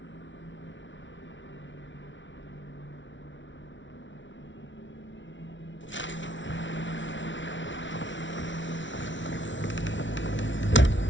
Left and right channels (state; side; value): late; right; 0.55 ms